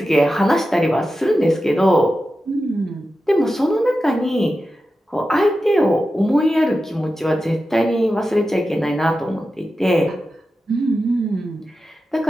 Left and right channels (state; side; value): normal; both; correlation 0.92